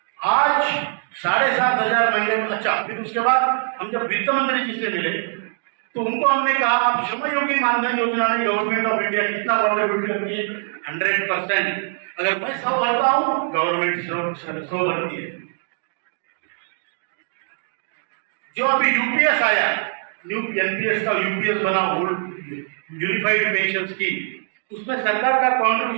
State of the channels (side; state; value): left; silent; digital silence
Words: आज 7,500 महीने में, अच्छा फिर उसके बाद हम जब वित्त मंत्री जी से मिले तो उनको हमने कहा आप श्रमयोगी मानधन योजना में गवर्नमेंट ऑफ इंडिया कितना कॉन्ट्रीब्यूट करती है? 100%। अगर मैं 100 भरता हूं, गवर्नमेंट 100 भरती है। जो अभी यूपीएस आया, न्यू एनपीएस का यूपीएस बना, यूनिफाइड पेंशन स्कीम, उसमें सरकार का